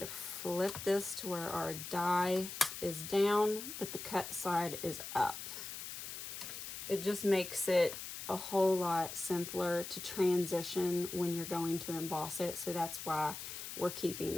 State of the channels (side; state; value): left; noise; hiss, 8 dB below the sound